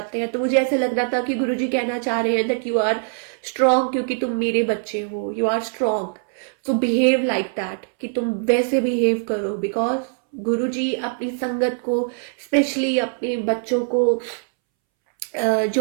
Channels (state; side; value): silent; left; 64 dB below the other